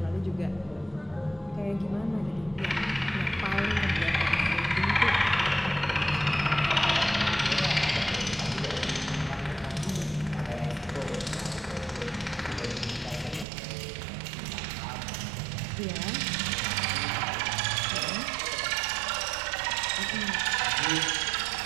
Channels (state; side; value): drops out; left; at 13.5 s